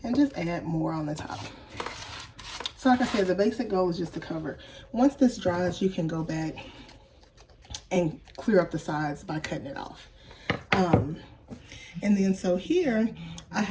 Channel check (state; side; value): identical; both; correlation 1.00